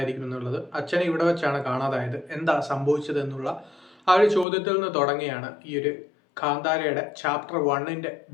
എന്നുള്ളത്. അച്ഛനെ ഇവിടെ വെച്ചാണ് കാണാതായത്, എന്താ സംഭവിച്ചത് എന്നുള്ള ആ ഒരു ചോദ്യത്തിൽ നിന്ന് തുടങ്ങിയാണ് ഈ ഒരു കാന്താരയുടെ ചാപ്റ്റർ 1ന്റെ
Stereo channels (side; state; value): right; drops out; at 4.5 s